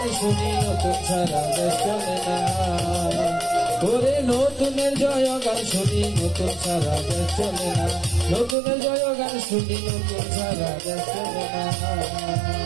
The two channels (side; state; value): left; drops out; at 8.6 s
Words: শুনি নতুন ছাড়া দেশ চলে না। ওরে নতুনের জয় গান শুনি নতুন ছাড়া দেশ চলে না, নতুনের জয় গান শুনি নতুন ছাড়া দেশ চলে না।